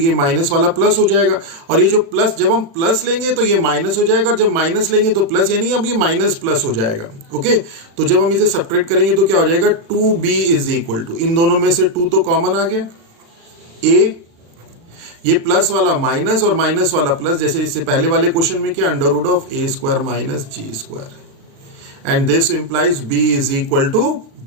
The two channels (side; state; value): left; late; 36 ms